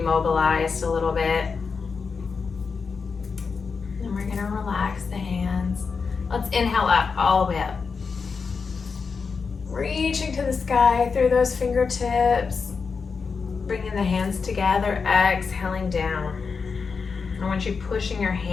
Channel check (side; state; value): right; quieter; 5.2 dB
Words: a little bit. And we're going to relax the hands. Let's inhale up, all the way up. Reaching to the sky through those fingertips. Bringing the hands together, exhaling down. I want you pushing your